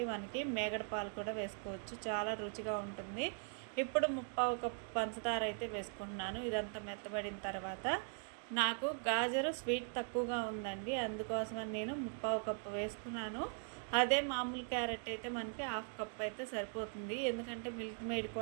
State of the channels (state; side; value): silent; left; 51 dB below the other